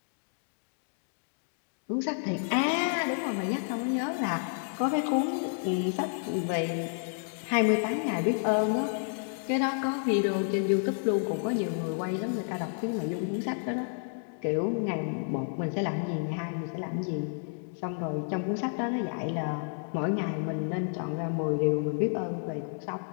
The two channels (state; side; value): silent; right; digital silence